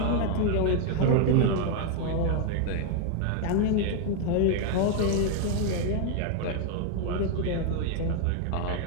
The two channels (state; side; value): different; both; correlation 0.00